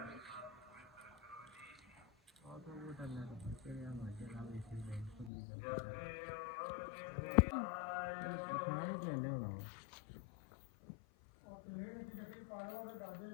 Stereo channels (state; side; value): drops out; right; at 5.3 s